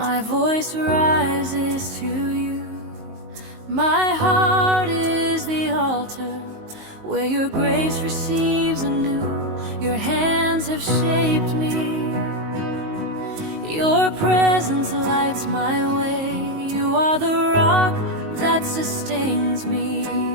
voice rises to you. My heart is the altar where your grace receives anew. Your hands have shaped me. Your presence lights my way. You are the rock that sustains me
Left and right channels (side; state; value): left; late; 19 ms